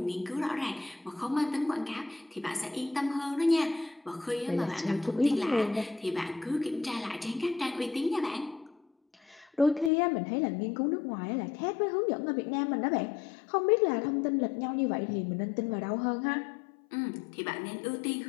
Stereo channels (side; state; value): right; drops out; at 9.9 s